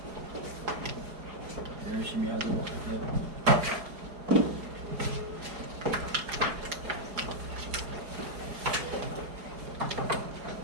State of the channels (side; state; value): left; late; 4.8 ms